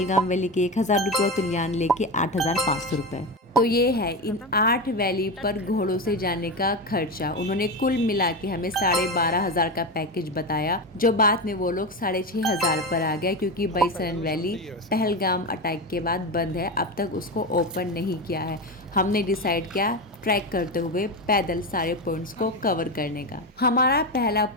वैली के 1000 रुपए, और तुलियान लेक के 8500 रुपए। तो ये है इन 8 वैली पर घोड़ों से जाने का खर्चा। उन्होंने कुल मिला के हमें 12,500 का पैकेज बताया, जो बाद में वो लोग 6,500 पर आ गया, क्योंकि बैसरन वैली पहलगाम अटैक के बाद बंद है, अब तक उसको ओपन नहीं किया है। हमने डिसाइड किया ट्रैक करते हुए पैदल सारे पॉइंट्स को कवर करने का। हमारा पहला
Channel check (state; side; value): normal; both; correlation 0.18